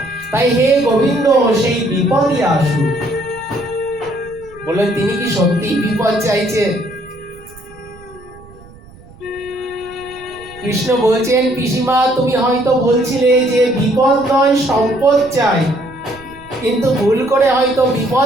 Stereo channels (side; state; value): right; noise; rumble, 22 dB below the sound